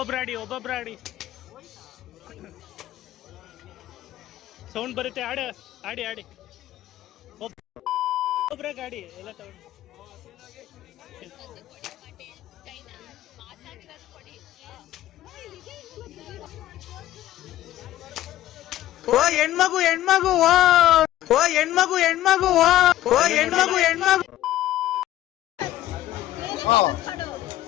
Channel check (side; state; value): right; quieter; 14.0 dB